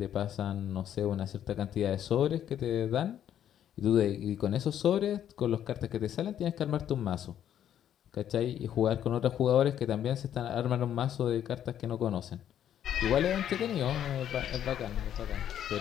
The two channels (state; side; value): quieter; right; 10.3 dB